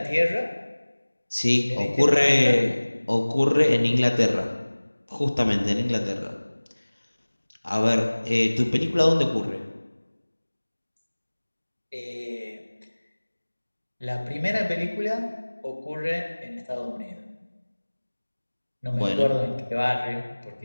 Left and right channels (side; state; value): both; inverted; correlation -1.00